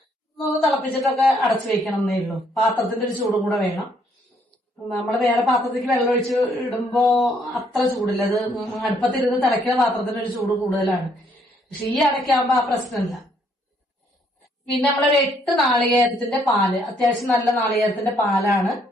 ഒന്ന് തിളപ്പിച്ചിട്ടൊക്കെ അടച്ചു വെക്കണം എന്നേ ഉള്ളൂ. പാത്രത്തിന്റെ ഒരു ചൂടും കൂടെ വേണം. നമ്മൾ വേറെ പാത്രത്തിലേക്ക് വെള്ളം ഒഴിച്ച് ഇടുമ്പോ അത്ര ചൂടില്ല. അത് അടുപ്പത്തിരുന്ന് തിളയ്ക്കുന്ന പാത്രത്തിന് ഒരു ചൂട് കൂടുതലാണ്. പക്ഷെ ഈ അടയ്ക്കാകുമ്പോ ആ പ്രശ്നമില്ല. പിന്നെ നമ്മളൊരു 8 നാളികേരത്തിന്റെ പാല്, അത്യാവശ്യം നല്ല നാളികേരത്തിന്റെ പാലാണ്.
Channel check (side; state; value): both; normal; correlation 0.68